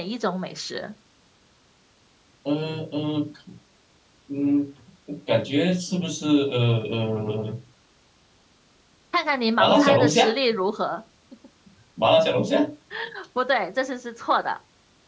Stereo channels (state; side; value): identical; both; correlation 1.00